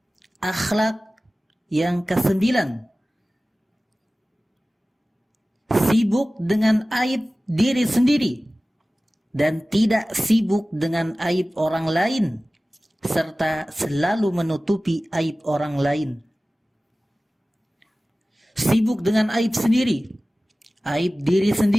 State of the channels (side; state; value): both; normal; correlation 0.97